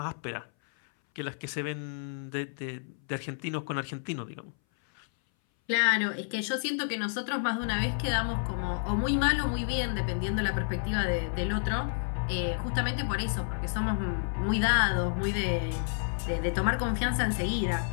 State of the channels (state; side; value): silent; right; 58 dB below the other